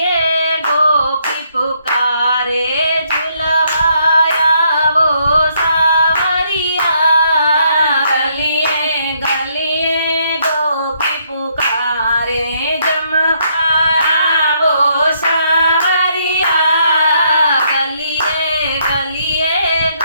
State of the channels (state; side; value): inverted; both; correlation -0.72